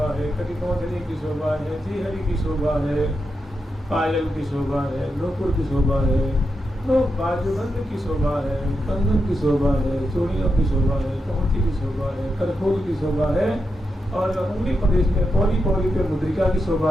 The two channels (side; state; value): both; normal; correlation 0.86